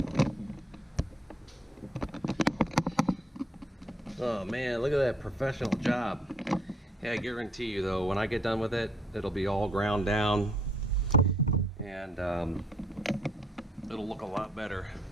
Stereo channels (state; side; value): normal; both; correlation 0.68